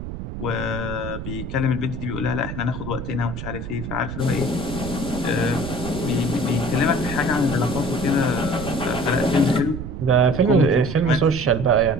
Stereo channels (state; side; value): noise; right; rumble, 8 dB below the sound